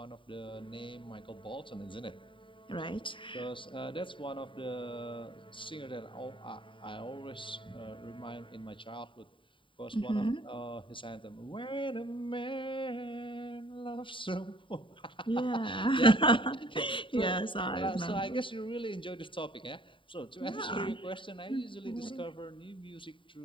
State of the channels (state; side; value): late; right; 0.25 ms